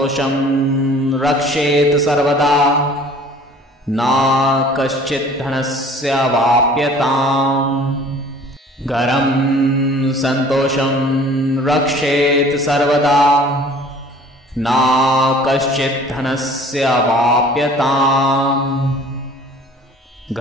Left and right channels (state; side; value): normal; both; correlation 0.50